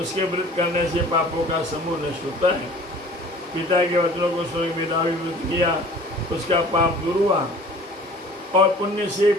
व्रत करने से पापों का समूह नष्ट होता है। पिता के वचनों को सुन मेधावी व्रत किया, उसका पाप दूर हुआ और पुण्य से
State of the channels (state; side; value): normal; both; correlation 0.47